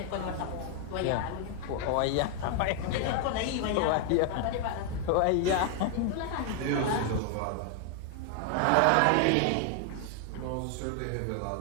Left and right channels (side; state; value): both; different; correlation 0.00